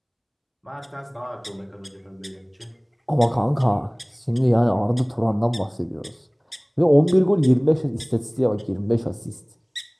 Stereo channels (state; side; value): identical; both; correlation 1.00